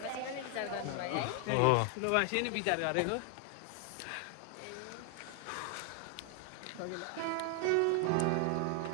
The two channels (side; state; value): both; different; correlation 0.00